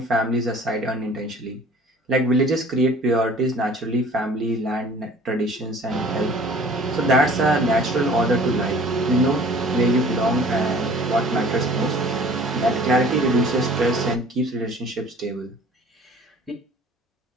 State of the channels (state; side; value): normal; both; correlation 0.49